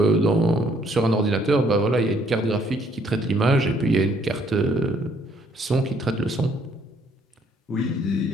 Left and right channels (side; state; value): both; normal; correlation 0.66